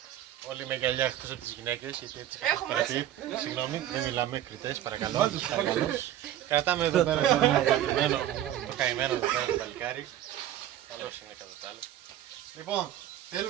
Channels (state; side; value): quieter; left; 12.2 dB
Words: Όλοι με γυαλιά εκτός από τις γυναίκες, γιατί έτσι είχα παρατηρήσει. Συγγνώμη, δεν μιλάμε κριτές, παρακαλώ. Κρατάμε εδώ πέρα το καημένο εδώ πέρα το παλικάρι. Καλώς είναι κατά τα άλλα. Λοιπόν,